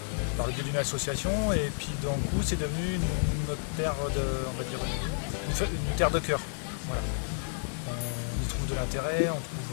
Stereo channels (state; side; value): silent; right; digital silence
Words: par le biais d'une association. Et puis d'un coup, c'est devenu notre terre de, on va dire, une terre de cœur. Voilà. On y trouve de l'intérêt, on